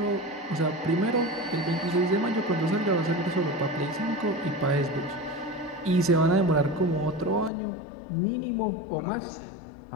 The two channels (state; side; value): drops out; right; at 7.5 s